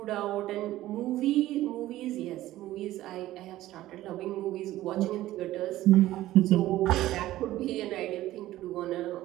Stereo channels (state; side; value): quieter; left; 15.2 dB